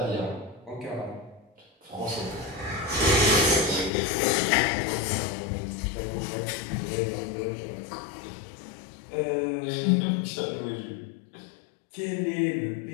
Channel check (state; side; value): drops out; right; at 3.9 s